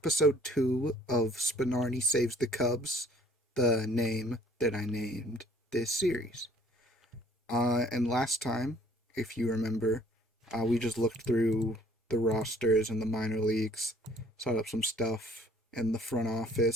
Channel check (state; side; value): normal; both; correlation 0.57